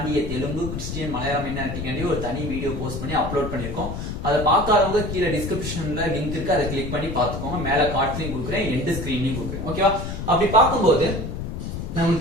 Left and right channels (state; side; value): noise; left; rumble, 5 dB below the sound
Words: தெலுங்கு, கிறிஸ்டியன், மலையாள மைனாரிட்டி காண்டி ஒரு தனி வீடியோ போஸ்ட் பண்ணி அப்லோட் பண்ணிருக்கோம். அதை பார்க்காதவங்க கீழே டிஸ்கிரிப்ஷன்ல லிங்க் இருக்கு, அதை கிளிக் பண்ணி பாத்துக்கோங்க. மேல கார்ட்லயும் கொடுக்குறேன், எண்ட் ஸ்கிரீன்லயும் கொடுக்குறேன். ஓகேவா, அப்படி பார்க்கும்போது